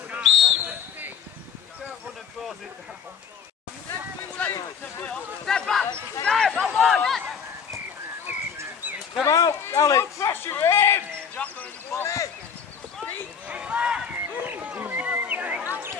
Come out, Alex. Pressure in!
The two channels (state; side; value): quieter; right; 7.0 dB